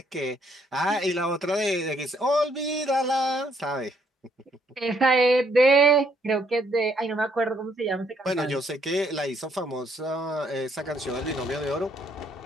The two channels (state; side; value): normal; both; correlation 0.70